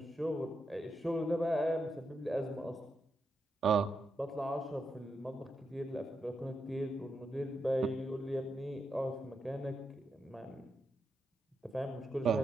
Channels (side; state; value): both; normal; correlation 0.85